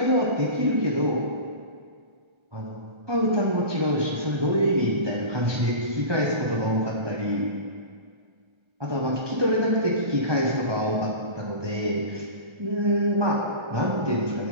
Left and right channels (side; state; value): left; late; 1.3 ms